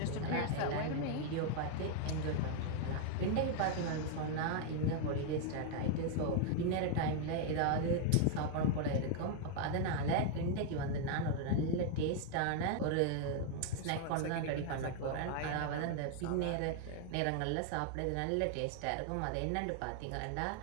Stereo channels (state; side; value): different; both; correlation 0.00